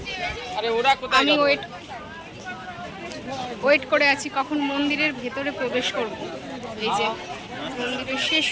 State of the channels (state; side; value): identical; both; correlation 1.00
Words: আমি ওয়েট করে আছি কখন মন্দিরের ভেতরে প্রবেশ করব। এই যে মন্দিরের শেষ